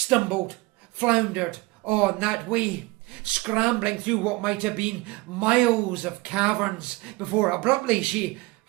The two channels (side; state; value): left; quieter; 22.2 dB